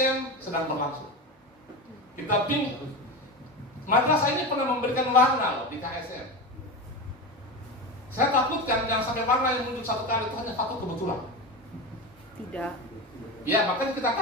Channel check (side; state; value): both; normal; correlation 0.22